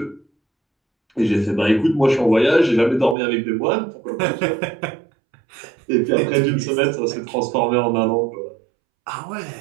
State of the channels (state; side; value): drops out; left; at 3.2 s